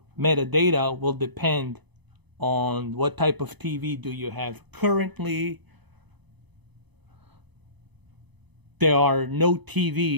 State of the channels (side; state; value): left; late; 0.99 ms